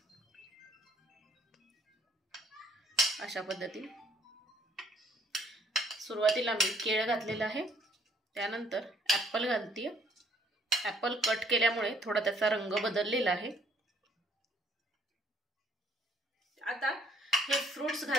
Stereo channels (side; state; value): both; normal; correlation 0.63